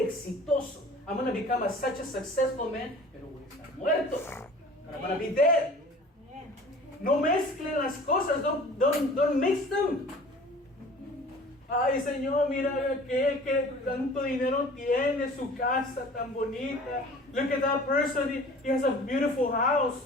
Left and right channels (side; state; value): both; normal; correlation 0.45